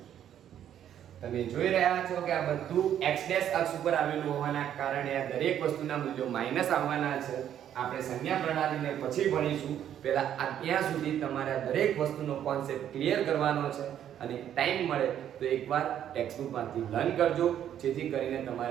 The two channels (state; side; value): quieter; left; 10.2 dB